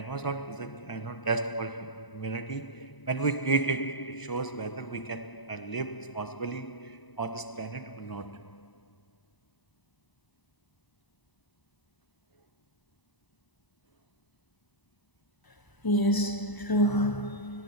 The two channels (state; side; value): late; right; 1.0 ms